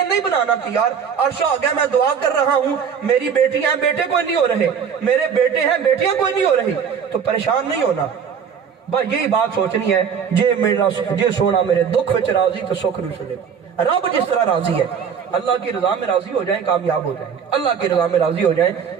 نہیں بنانا کہ یار عرش آ گیا میں دعا کر رہا ہوں میری بیٹیاں ہیں بیٹے کوئی نہیں ہو رہے, میرے بیٹے ہیں بیٹیاں کوئی نہیں ہو رہی, تو پریشان نہیں ہونا. بس یہی بات سوچنی ہے جے سونا میرے دکھ وچ راضی تو سکھ نو سنے. رب جس طرح راضی ہے اللہ کی رضا میں راضی ہو جائیں کامیاب ہو جائیں گے. اللہ کی رضا میں راضی ہو جائیں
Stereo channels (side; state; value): left; quieter; 7.1 dB